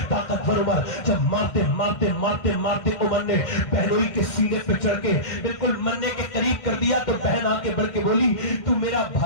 طاقتور عمر، جب مارتے عمر نے بہنوئی کے سینے پہ چڑھ کے بالکل مرنے کے قریب کر دیا تو بہن آ کے بڑھ کے بولی تو میرا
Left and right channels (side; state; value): right; late; 1.5 ms